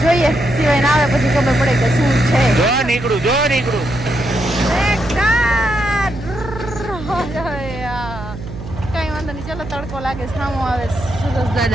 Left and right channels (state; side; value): noise; right; hum, 11 dB below the sound